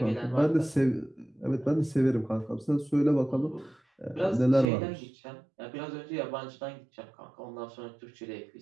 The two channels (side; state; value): left; drops out; at 4.7 s